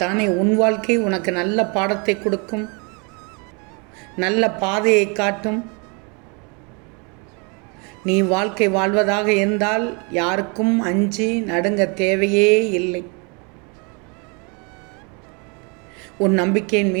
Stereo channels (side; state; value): left; quieter; 33.1 dB